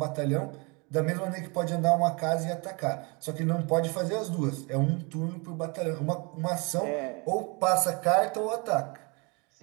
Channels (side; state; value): left; quieter; 30.2 dB